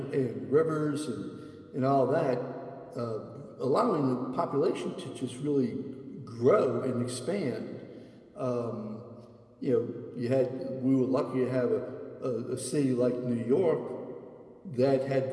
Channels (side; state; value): both; identical; correlation 1.00